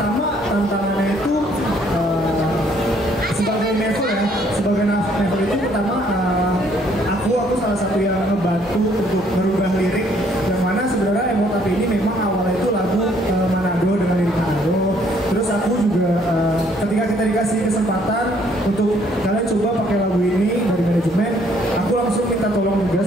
tantangannya itu sebagai Nevel ya, sebagai Nevel itu pertama aku salah satu yang ngebantu untuk merubah lirik, yang mana sebenarnya Emot Api ini memang awalnya itu lagu Manado dengan lirik Manado. Terus aku juga ketika kita dikasih kesempatan untuk kalian coba pakai lagu ini dari manajemen, aku langsung minta tolong juga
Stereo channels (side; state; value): both; normal; correlation 0.65